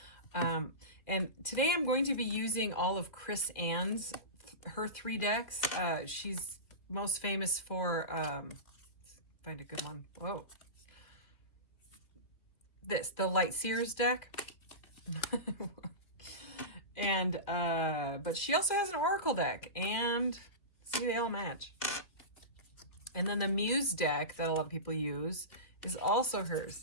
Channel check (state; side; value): late; right; 2.5 ms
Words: And today I'm going to be using all of Chris Ann's, her 3 decks. She's most famous for, find a good one. Whoa. The Light Seers deck. And, but she also has an Oracle deck, and see, they all match. And then the Muse deck that a lot of people use is also